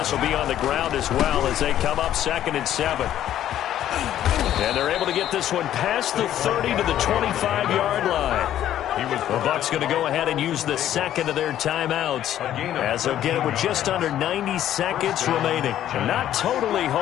will be on the ground as well as they come up 2nd and 7. And they're able to get this one past the 30 to the 25-yard line. The Bucs going to go ahead and use the second of their timeouts, as they'll get it with just under 90 seconds remaining. Not totally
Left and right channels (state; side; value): quieter; right; 11.7 dB